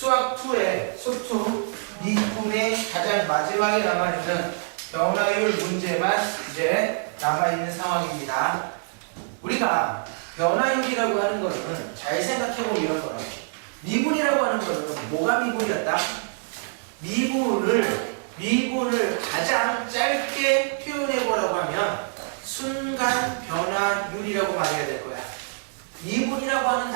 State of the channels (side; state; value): left; silent; digital silence